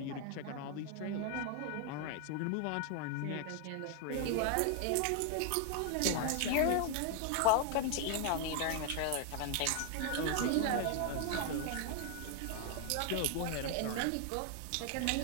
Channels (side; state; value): both; different; correlation 0.00